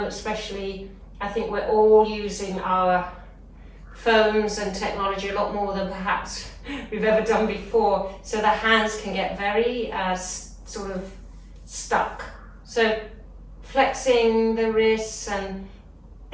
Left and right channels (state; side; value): identical; both; correlation 1.00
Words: especially, I think we're all using our phones and technology a lot more than perhaps we've ever done before, so the hands can get very sort of stuck. So flexing the wrists and